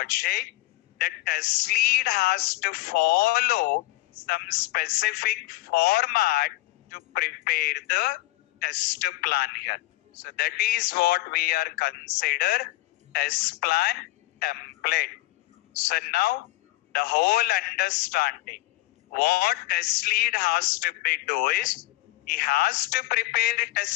the test lead has to follow some specific format to prepare the test plan here. So that is what we are consider test plan template. So now the whole understanding what test lead has to be do is he has to prepare a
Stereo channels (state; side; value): quieter; right; 19.0 dB